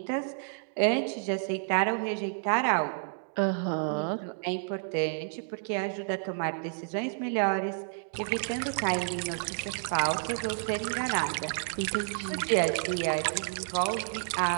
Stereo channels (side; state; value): left; silent; digital silence